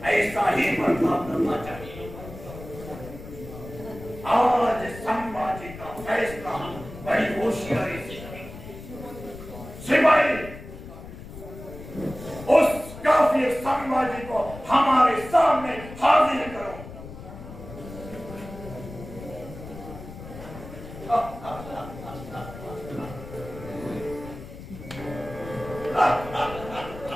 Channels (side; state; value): left; noise; rumble, 13 dB below the sound